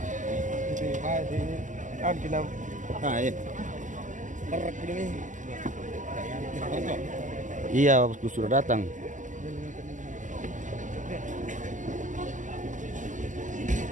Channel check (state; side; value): late; left; 0.37 ms